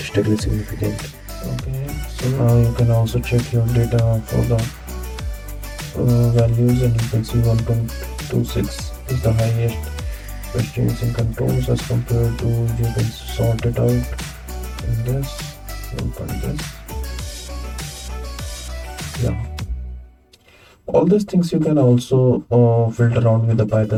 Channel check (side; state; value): both; identical; correlation 1.00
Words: significant. Okay, so now you can also check your data for the values, and you can see 1.26 is the highest questions in controls as compared to, you can sort it out in this, yeah. All these things you can also filter around with the